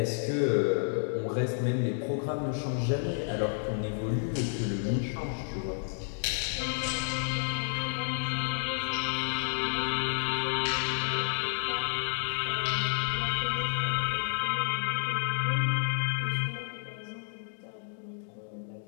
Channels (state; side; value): silent; right; digital silence